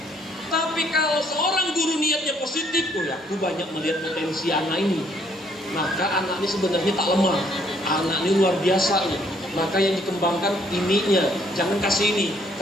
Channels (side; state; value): both; normal; correlation 0.66